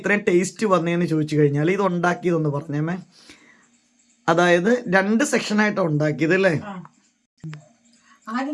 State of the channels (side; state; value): both; identical; correlation 1.00